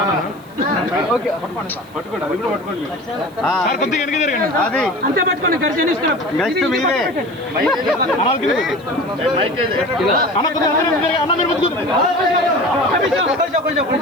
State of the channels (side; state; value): right; noise; hiss, 28 dB below the sound